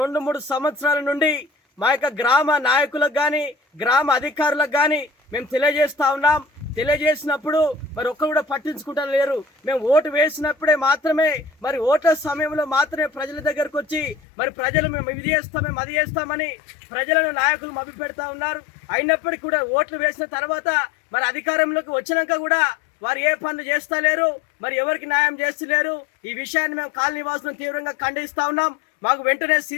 2-3 సంవత్సరాల నుండి మా యొక్క గ్రామ నాయకులకు కానీ గ్రామ అధికారులకు కానీ మేము తెలియజేస్తా ఉన్నాం. తెలియజేసినప్పుడు మరి ఒక్కరు కూడా పట్టించుకుంటా లేరు. మేము ఓటు వేసినప్పుడే మాత్రమే మరి ఓట్ల సమయంలో మాత్రమే ప్రజల దగ్గరకు వచ్చి మరి ప్రజలు మేము ఇది చేస్తాం మేము అది చేస్తామని ప్రజలను నాయకులు మభ్యపెడతా ఉన్నారు. అయినప్పటికీ కూడా ఓట్లు వేసిన తర్వాత మరి అధికారంలోకి వచ్చినాక కూడా వారు ఏ పనులు చేస్తలేరు, మరి ఎవరికి న్యాయం చేస్తలేరు. ఈ విషయాన్ని మేము కాలనీ వాసులను తీవ్రంగా ఖండిస్తా ఉన్నాం. మాకు వెంటనే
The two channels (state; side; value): drops out; right; at 14.2 s